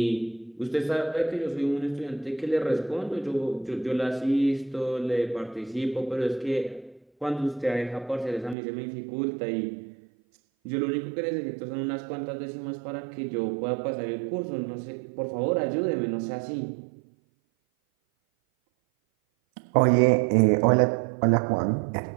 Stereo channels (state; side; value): drops out; left; at 8.6 s